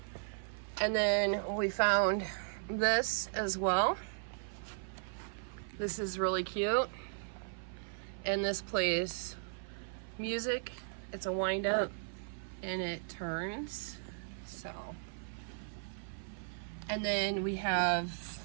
And then we found this as well. This is really cute. And this plays music. It's a wind up and it turns. So. And then I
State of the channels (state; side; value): silent; left; 53 dB below the other